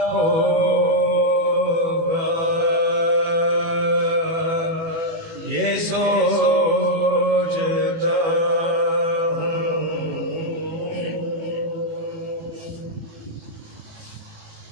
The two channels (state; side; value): late; left; 18 ms